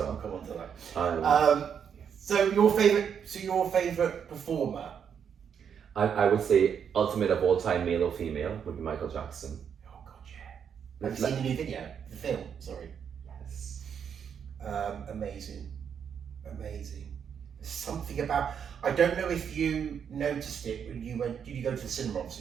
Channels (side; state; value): left; quieter; 7.7 dB